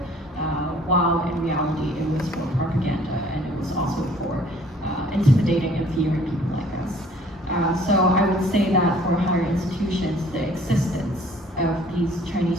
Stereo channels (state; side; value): normal; both; correlation 0.56